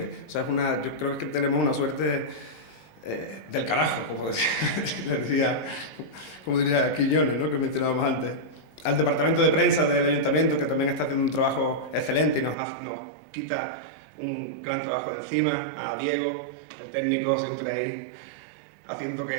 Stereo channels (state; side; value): drops out; left; at 12.6 s